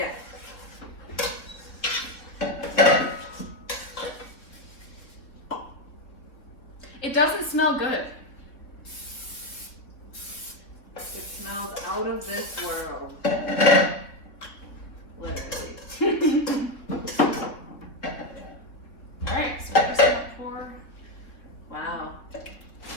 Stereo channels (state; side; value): late; right; 3.6 ms